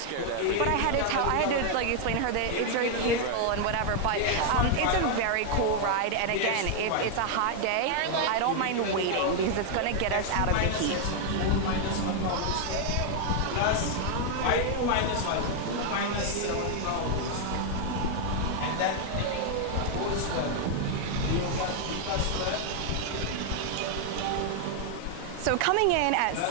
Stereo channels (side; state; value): both; different; correlation 0.00